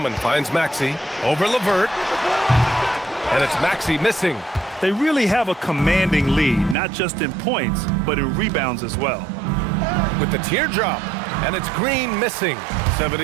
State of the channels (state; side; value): drops out; left; at 6.8 s